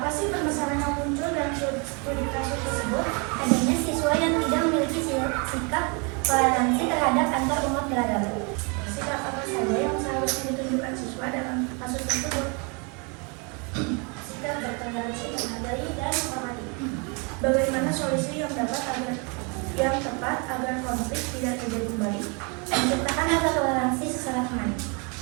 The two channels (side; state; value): left; quieter; 33.1 dB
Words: sih permasalahan yang muncul dalam studi kasus tersebut? Adanya siswa yang tidak memiliki sikap toleransi terhadap antar umat beragama. Sikap apa saja yang seharusnya ditunjukkan siswa dalam kasus tersebut? Sikap bertoleransi, menghargai, dan menghormati. Bagaimana solusi yang tepat agar konflik tidak terjadi kembali? Menciptakan rasa toleransi sesama teman.